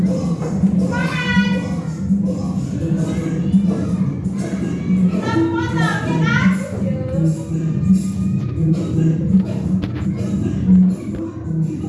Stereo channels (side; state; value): both; identical; correlation 1.00